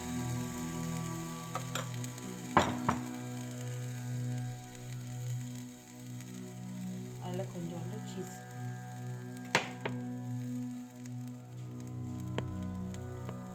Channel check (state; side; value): identical; both; correlation 1.00